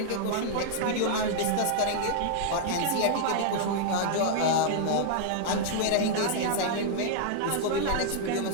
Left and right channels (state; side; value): different; both; correlation -0.01